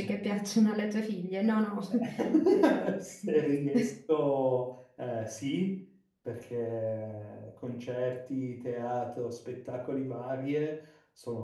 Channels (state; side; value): identical; both; correlation 1.00